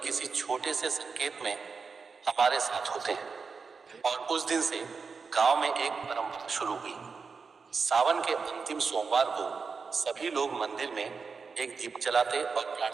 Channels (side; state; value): left; quieter; 5.1 dB